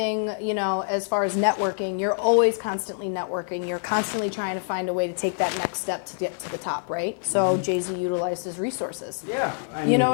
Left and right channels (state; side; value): silent; right; digital silence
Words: you know, as far as networking, you're always constantly networking. You're constantly trying to find a way to take that next step to get to the top, right? So Jay-Z utilized his resources. Yeah, I mean, You know